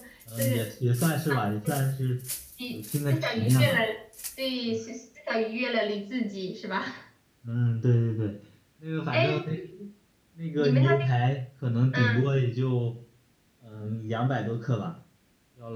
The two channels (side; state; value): both; identical; correlation 1.00